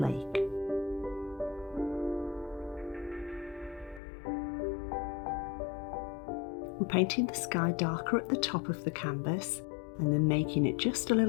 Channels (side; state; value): right; drops out; at 4.0 s